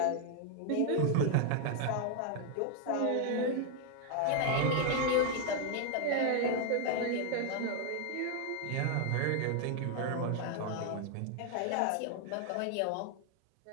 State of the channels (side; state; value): both; different; correlation 0.00